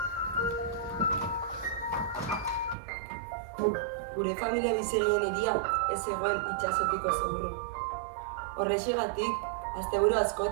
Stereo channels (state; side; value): drops out; left; at 2.8 s